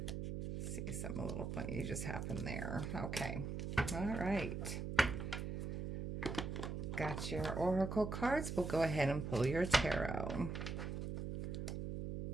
Let's see, something a little funny just happened there. Okay, all right. Got your oracle cards. We'll go ahead and pull your tarot.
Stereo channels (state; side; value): noise; right; hum, 4 dB below the sound